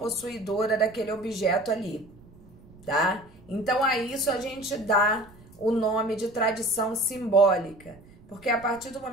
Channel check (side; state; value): right; noise; rumble, 24 dB below the sound